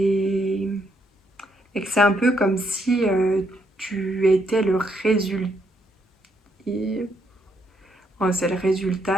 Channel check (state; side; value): normal; both; correlation 0.75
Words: et que c'est un peu comme si tu étais le résultat. C'est le